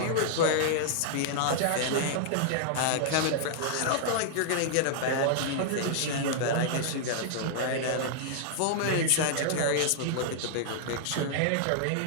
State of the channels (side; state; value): both; different; correlation -0.01